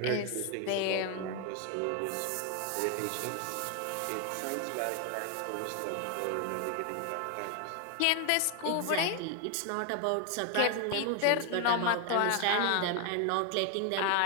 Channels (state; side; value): different; both; correlation 0.01